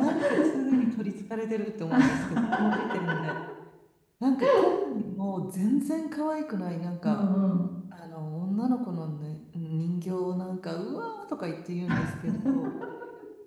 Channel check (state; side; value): identical; both; correlation 1.00